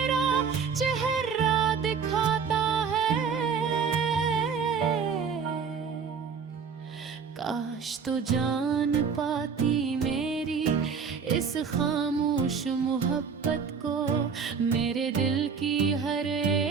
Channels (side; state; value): left; quieter; 6.0 dB